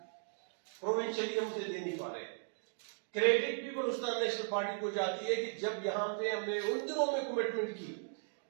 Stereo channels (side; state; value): left; silent; digital silence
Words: پروونشلی ہم سے دے نہیں پا رہے. کریڈٹ بھی بلوچستان نیشنل پارٹی کو جاتی ہے کہ جب یہاں پہ ہم نے ان دنوں میں کمٹمنٹ کی